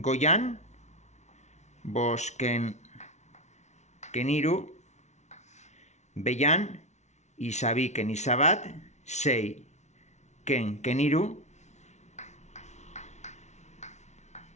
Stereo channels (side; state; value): right; late; 0.33 ms